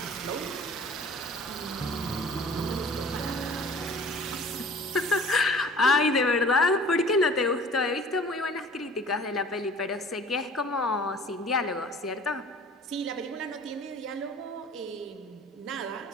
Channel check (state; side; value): normal; both; correlation 0.47